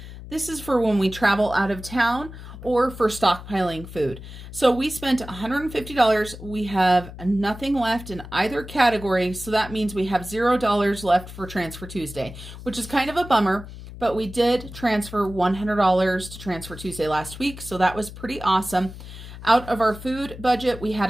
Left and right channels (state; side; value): noise; left; hum, 13 dB below the sound